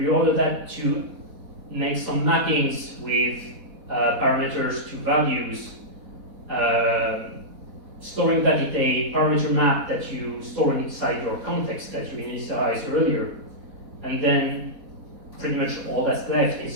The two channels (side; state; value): left; late; 4.1 ms